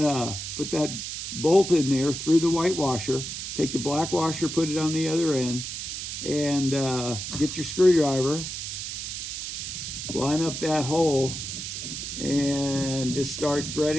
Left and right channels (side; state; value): right; noise; hiss, 6 dB below the sound